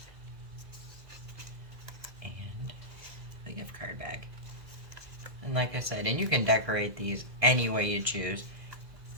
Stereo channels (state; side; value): late; left; 2.0 ms